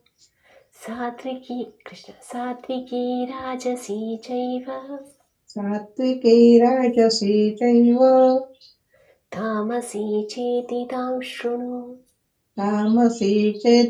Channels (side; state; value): both; identical; correlation 1.00